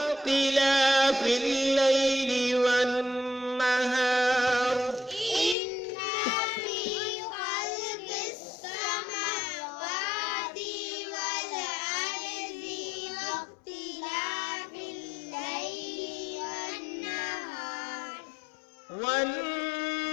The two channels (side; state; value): right; drops out; at 5.6 s